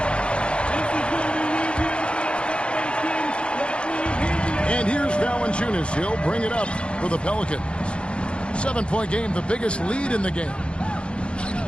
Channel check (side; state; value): right; late; 0.056 ms